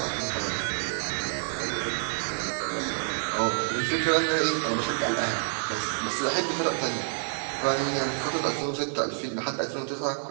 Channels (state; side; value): silent; left; digital silence